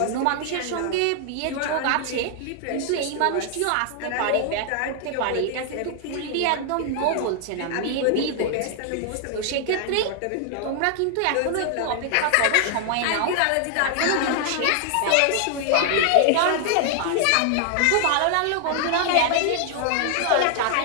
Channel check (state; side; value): different; both; correlation 0.00